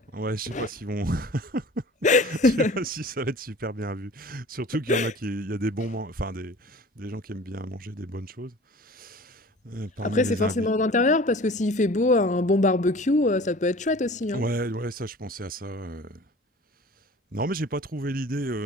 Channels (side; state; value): both; normal; correlation 0.43